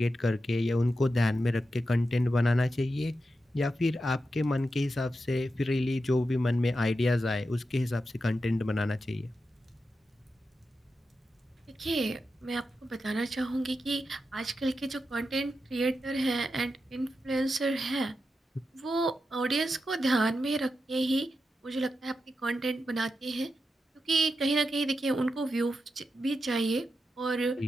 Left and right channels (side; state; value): both; normal; correlation 0.88